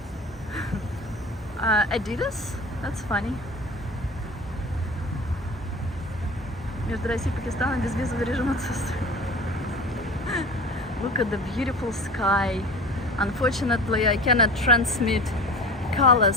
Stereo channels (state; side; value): normal; both; correlation 0.36